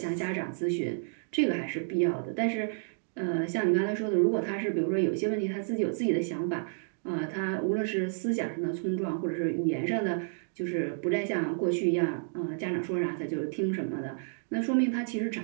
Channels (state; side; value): silent; left; digital silence